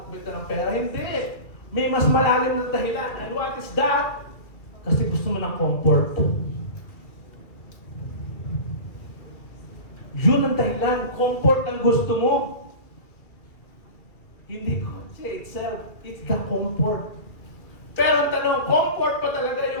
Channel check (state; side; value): late; right; 2.2 ms